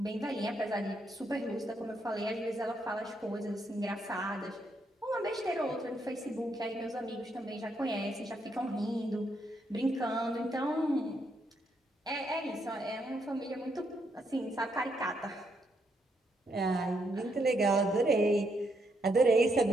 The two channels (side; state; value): both; normal; correlation 0.77